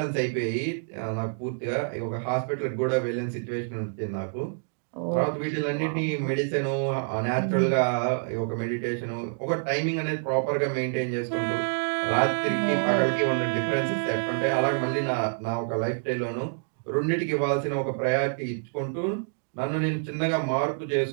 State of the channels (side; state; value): left; silent; digital silence